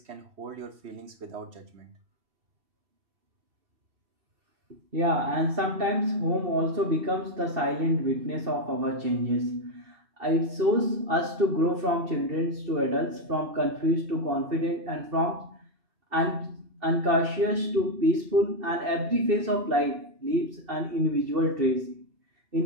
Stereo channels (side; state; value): left; late; 2.7 ms